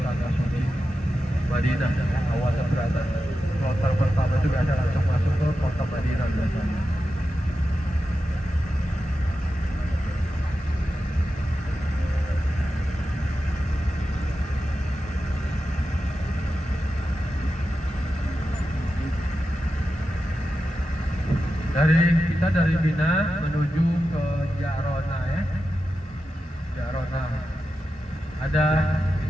tanah suci Madinah. Awalnya berada kloter pertama itu biasa langsung masuk ke kota Madinah biasanya. Dari Mina menuju ke Jarona ya. Jarona. Ada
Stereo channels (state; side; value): normal; both; correlation 0.91